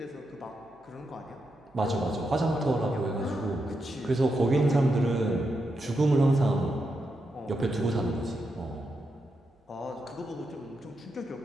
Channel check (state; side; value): normal; both; correlation 0.85